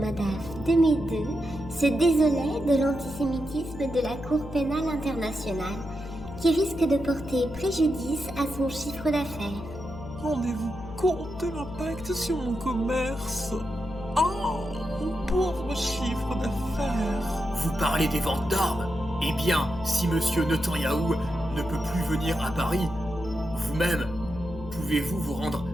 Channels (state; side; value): noise; left; hum, 12 dB below the sound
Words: de Médeux, se désolait de l'antisémitisme de la Cour pénale internationale, qui risque de porter préjudice à son chiffre d'affaires. Rendez-vous compte de l'impact sur mon commerce. Oh, mon pauvre chiffre d'affaires. Vous parlez des ventes d'armes? Eh bien, si monsieur Netanyahou ne peut plus venir à Paris, vous-même, pouvez-vous vous rendre